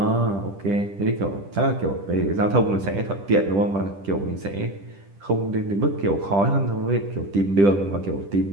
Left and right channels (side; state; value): left; late; 10 ms